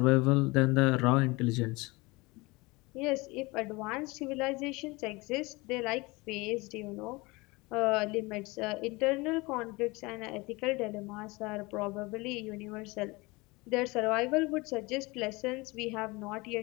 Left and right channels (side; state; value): right; quieter; 24.2 dB